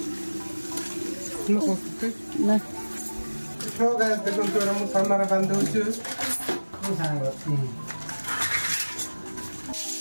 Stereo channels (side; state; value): both; inverted; correlation -1.00